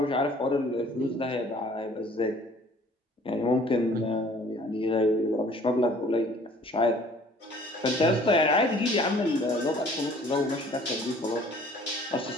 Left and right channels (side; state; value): both; normal; correlation 0.53